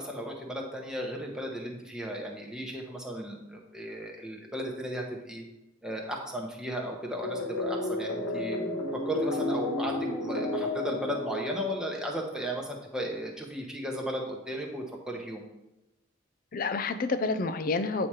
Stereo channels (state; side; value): normal; both; correlation 0.33